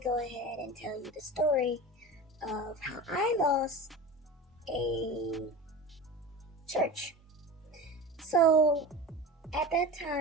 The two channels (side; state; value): both; normal; correlation 0.31